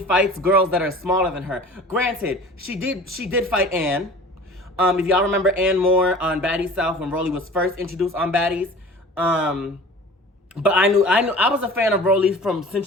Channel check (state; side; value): normal; both; correlation 0.42